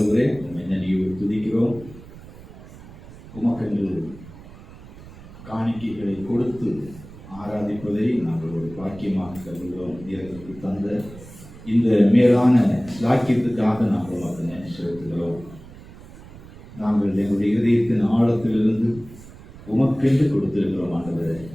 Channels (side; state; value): right; noise; rumble, 18 dB below the sound